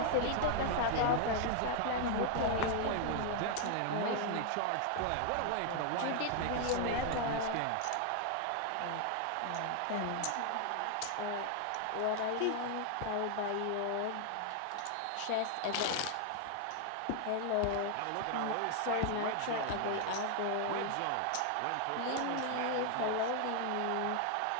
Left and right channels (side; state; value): both; different; correlation 0.00